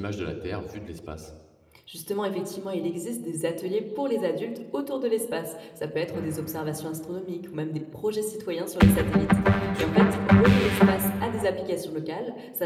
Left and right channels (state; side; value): identical; both; correlation 1.00